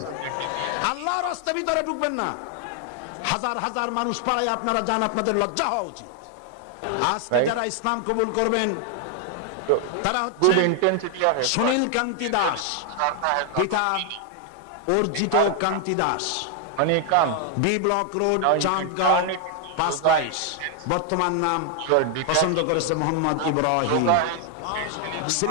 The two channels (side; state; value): both; different; correlation 0.00